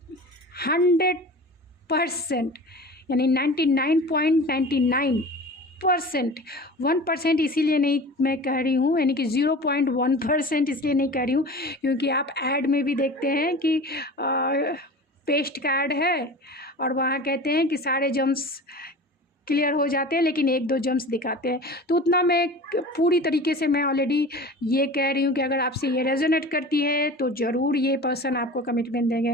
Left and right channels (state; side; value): normal; both; correlation 0.37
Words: 100% यानी 99.99%, 1% इसीलिए नहीं मैं कह रही हूँ, यानी कि 0.1% इसलिए नहीं कह रही हूँ क्योंकि आप ऐड में भी देखते हैं कि पेस्ट कार्ड है और वहाँ कहते हैं कि सारे जम्स क्लियर हो जाते हैं लेकिन 1-2 जम्स दिखाते हैं। तो उतना मैं पूरी तरीके से मैं ऑलरेडी ये कह रही हूँ कि अगर आपसे ये रेजोनेट करती है तो ज़रूर ये पर्सन आपको कमिटमेंट